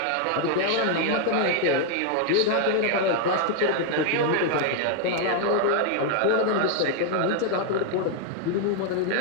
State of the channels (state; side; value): different; both; correlation 0.00